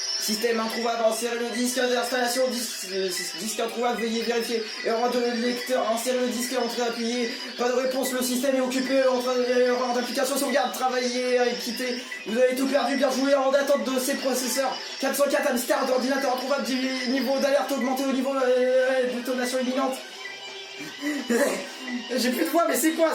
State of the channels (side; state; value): both; identical; correlation 1.00